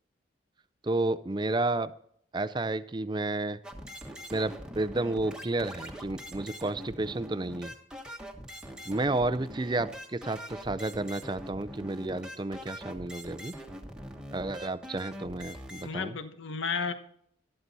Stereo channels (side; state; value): both; normal; correlation 0.54